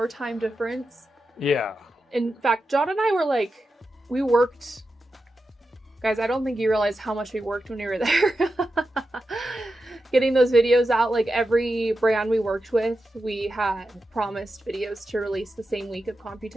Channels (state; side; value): normal; both; correlation 0.90